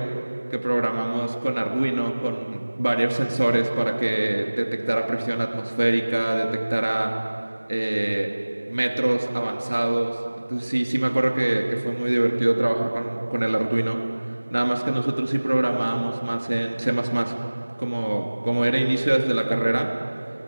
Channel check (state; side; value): inverted; both; correlation -1.00